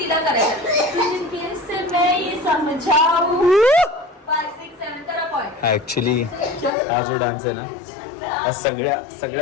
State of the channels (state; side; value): drops out; right; at 6.7 s